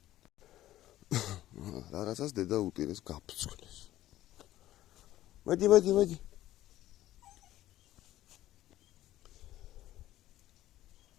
რაღაცას დედა უტირეს გაფრთხილეს. მოდი.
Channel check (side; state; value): right; quieter; 14.3 dB